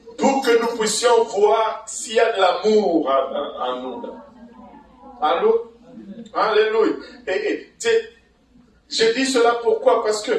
Pour que nous puissions voir s'il y a de l'amour en nous. Allô? Alléluia. Et je dis cela pourquoi? Parce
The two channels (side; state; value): both; identical; correlation 1.00